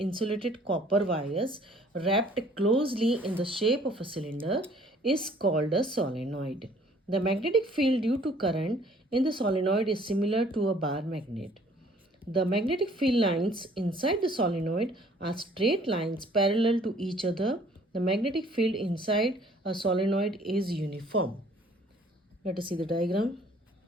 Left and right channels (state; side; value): normal; both; correlation 0.57